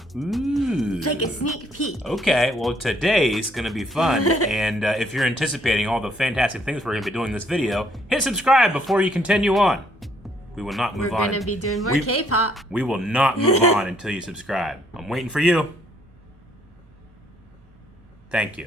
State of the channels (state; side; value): normal; both; correlation 0.67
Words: It's like a sneak peek. Okay, well today's gonna be fun, and if you're anticipating all the fantastic things we're gonna be doing in this video, hit subscribe before you continue on. We will not move on. We're gonna be doing more K-pop. We will not move on until you subscribe. I'm waiting for you. Thank